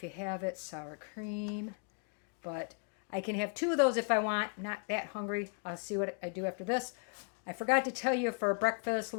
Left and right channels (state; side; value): quieter; right; 39.2 dB